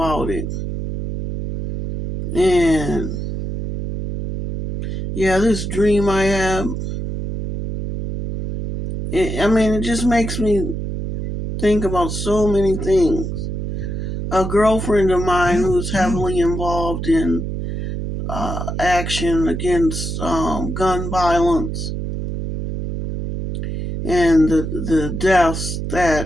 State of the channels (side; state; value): right; noise; hum, 4 dB below the sound